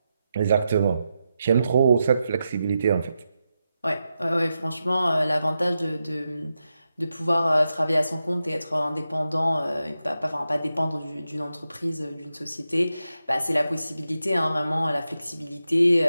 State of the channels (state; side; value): inverted; both; correlation -0.88